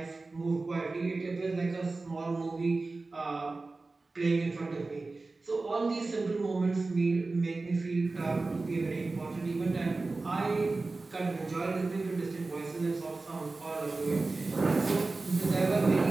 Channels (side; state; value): left; quieter; 3.5 dB